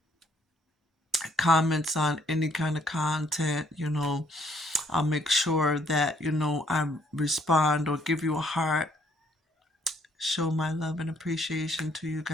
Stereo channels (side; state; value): both; normal; correlation 0.66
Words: comments on any kind of content. I'll make sure that, I respond or give you a heart, show my love and appreciation to you